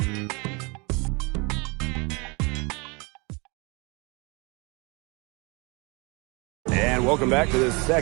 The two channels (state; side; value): quieter; left; 28.9 dB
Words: And welcome back to the